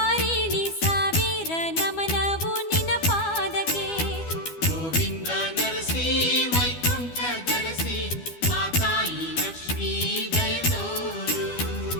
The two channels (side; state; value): right; late; 12 ms